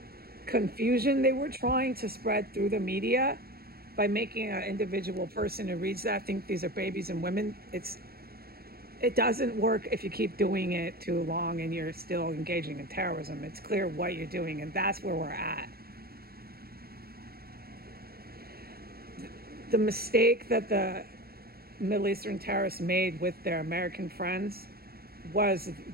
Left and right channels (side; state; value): left; late; 0.44 ms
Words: confusion they were trying to spread through the media by making an individual person who reads that think these are babies and women. It doesn't work if you keep doing it too long and you're still engaging in terrorism. It's clear what you're doing, and that's where we're at. The mistake that the Middle Eastern terrorists made with their American friends was